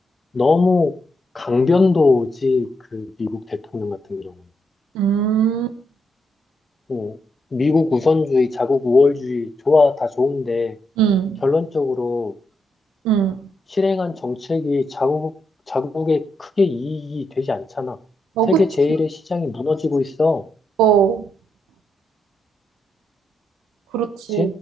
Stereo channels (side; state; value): both; normal; correlation 0.81